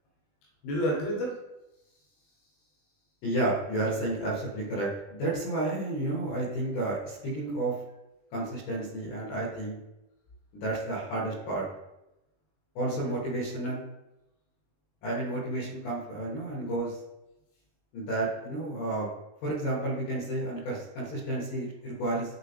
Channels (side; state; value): right; late; 20 ms